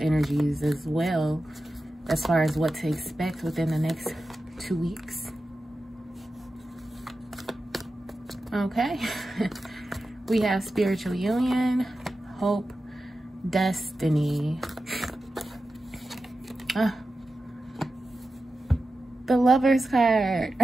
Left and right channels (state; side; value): normal; both; correlation 0.93